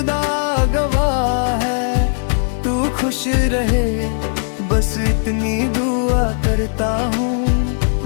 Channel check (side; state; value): right; silent; digital silence